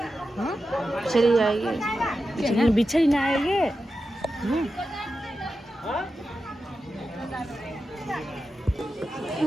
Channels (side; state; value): both; normal; correlation 0.91